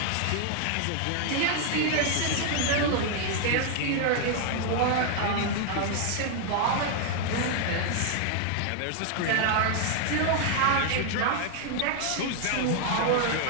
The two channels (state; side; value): different; both; correlation 0.00